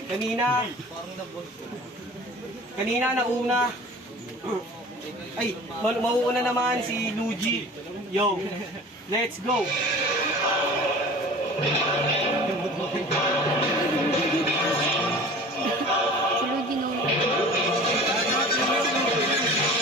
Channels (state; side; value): normal; both; correlation 0.42